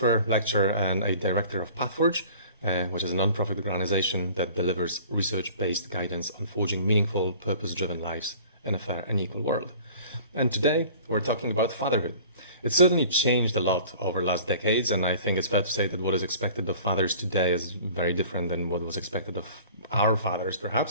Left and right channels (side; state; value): both; inverted; correlation -0.47